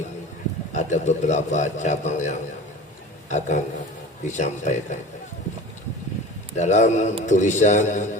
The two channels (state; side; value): normal; both; correlation 0.37